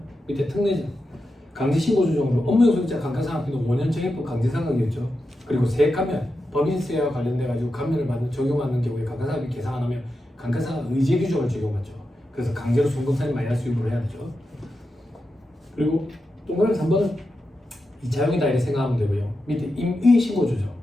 밑에 특례 강제신고 조정으로 업무용소득자 감가상각비는 5년 정액법 강제상각이었죠. 그리고 세액감면 법인세와 관련돼 가지고 감면을 받는 적용받는 경우에 감가상각비 계상 안 하면 감가상각 의제 규정을 적용받죠. 그래서 강제로 송금산이 마이너스 유무를 해야 되죠. 그리고 동그라미 3번은 2차형이다 이렇게 생각하면 되고요. 밑에 임의 신고 조정.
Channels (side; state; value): both; normal; correlation 0.89